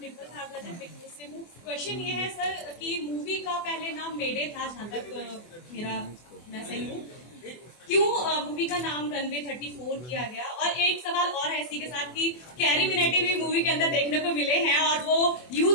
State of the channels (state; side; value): late; right; 24 ms